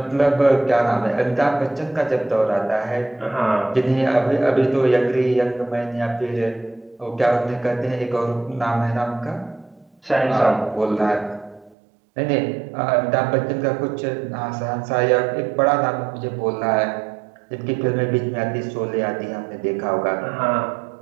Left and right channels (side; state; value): left; drops out; at 11.8 s